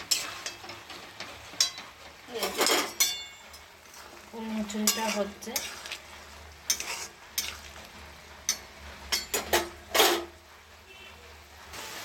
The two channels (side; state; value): both; identical; correlation 1.00